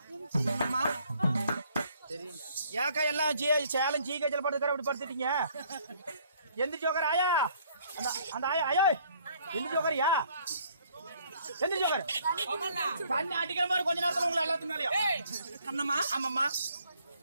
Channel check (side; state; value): both; inverted; correlation -0.63